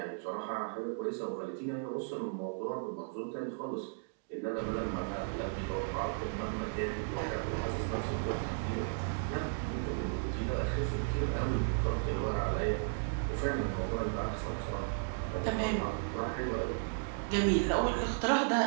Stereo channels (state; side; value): silent; left; digital silence